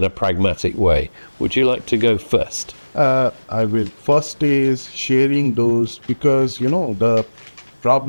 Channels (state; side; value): inverted; both; correlation -1.00